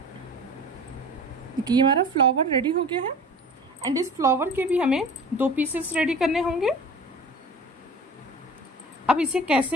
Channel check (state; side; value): normal; both; correlation 0.39